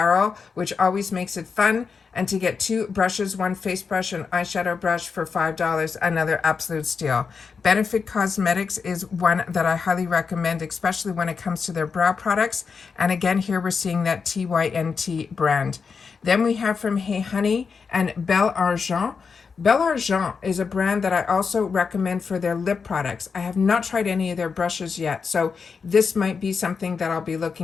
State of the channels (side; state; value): right; quieter; 5.4 dB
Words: which always makes it fun. And to get two brushes, one face brush and eyeshadow brush for $5, another absolute steal. Benefit Cosmetics is one that I highly recommend, especially when it comes to their brow products. And again, here we're seeing that TYNT brand. Then we have from Hey Honey and Belle Argent. Belle Argent is a brand that I also recommend for their lip products. I have not tried any of their brushes yet, so this might be something that I'll be